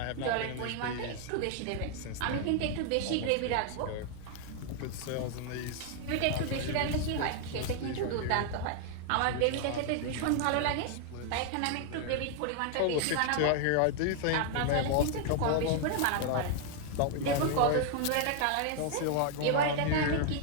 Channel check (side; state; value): both; different; correlation 0.00